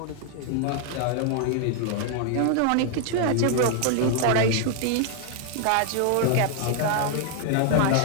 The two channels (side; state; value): both; different; correlation 0.00